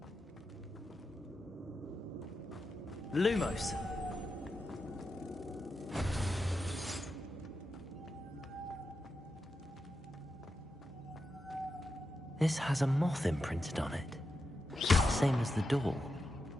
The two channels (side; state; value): both; normal; correlation 0.88